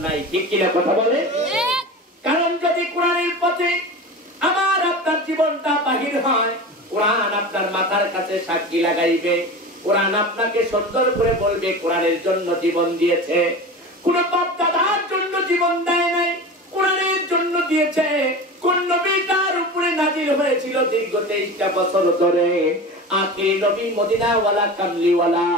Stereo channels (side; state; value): both; normal; correlation 0.31